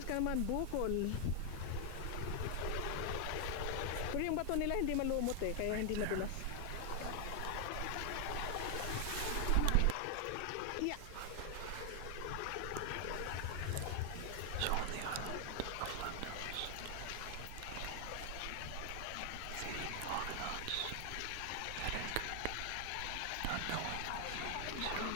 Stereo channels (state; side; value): different; both; correlation 0.00